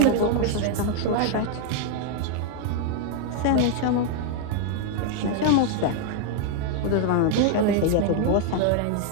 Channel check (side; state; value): both; different; correlation 0.00